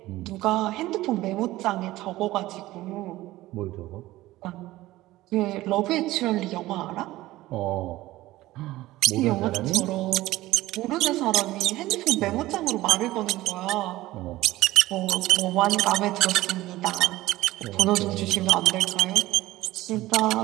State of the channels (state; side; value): quieter; left; 17.1 dB